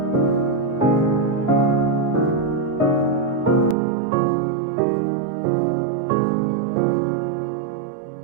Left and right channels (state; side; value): drops out; left; at 3.8 s